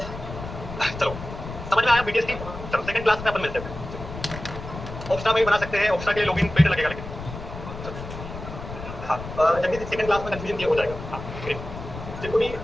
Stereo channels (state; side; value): noise; left; rumble, 10 dB below the sound